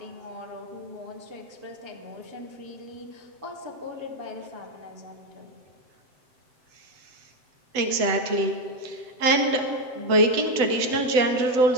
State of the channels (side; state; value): left; late; 8.0 ms